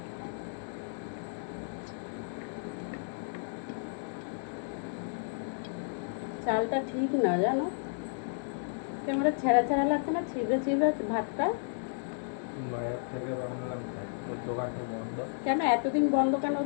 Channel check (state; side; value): silent; right; digital silence